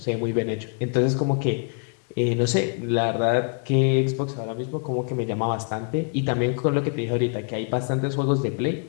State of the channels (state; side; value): quieter; right; 39.9 dB